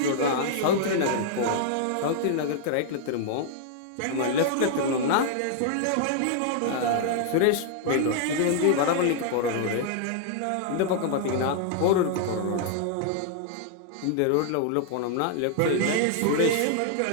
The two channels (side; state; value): both; different; correlation -0.01